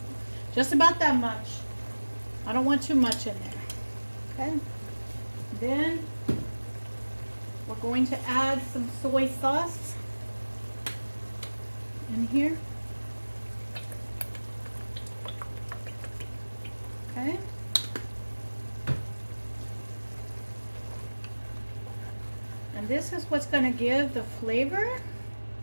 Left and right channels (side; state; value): both; inverted; correlation -1.00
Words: just about that much. I don't want too much in there. Okay. Then we're going to add some soy sauce in here. Okay. And this is what's going to give the flavor